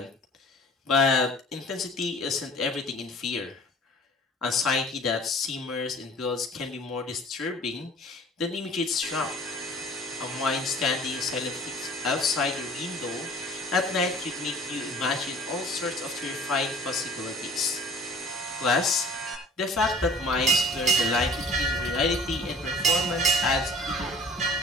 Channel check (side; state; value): both; normal; correlation 0.48